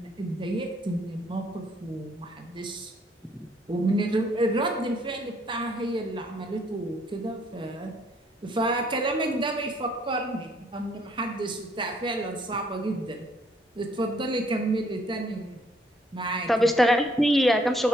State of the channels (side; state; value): both; normal; correlation 0.65